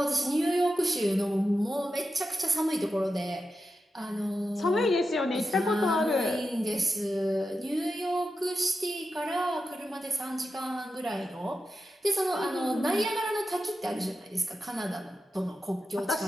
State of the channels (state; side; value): normal; both; correlation 0.89